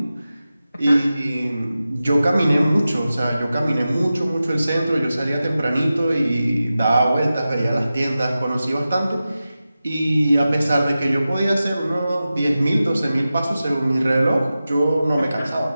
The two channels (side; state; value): both; inverted; correlation -0.94